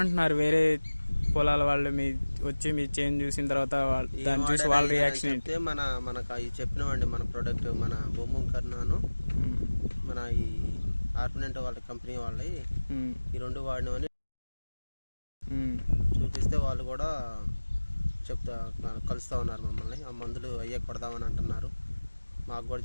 వేరే పొలాల వాళ్ళు వచ్చి మీ చేంజ్ చూసిన తర్వాత దాన్ని చూసి వాళ్ళ రియాక్షన్ ఏంటి? మనకు అవి చెప్పినామండి. మన ప్రోడక్ట్ మన బొమ్మ కర్నాను మన ఈ ఆర్పినెంట్ వాళ్ళ కంపెనీ వాళ్ళవి ఈ రెండు వాడినవని చూపిస్తే వాళ్ళు కూడా కలుస్తూ ఉన్నారు మమ్మల్ని. ఆ మందులు అయ్యే కొడదామని అంటున్నారు. మాకు కూడా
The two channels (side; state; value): both; inverted; correlation -1.00